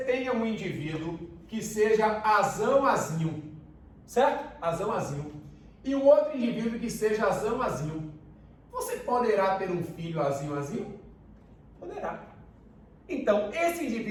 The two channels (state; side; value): identical; both; correlation 1.00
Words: tenha um indivíduo que seja azão-azinho. certo? Azão, azinho. E o outro indivíduo que seja azão, azinho. Você poderá ter um filho azinho, azinho? Poderá. Então, esse